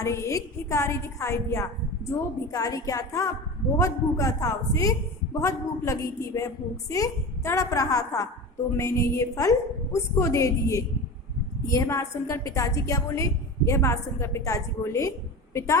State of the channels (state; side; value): normal; both; correlation 0.29